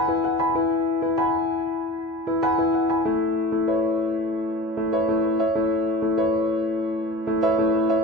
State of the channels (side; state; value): both; normal; correlation 0.35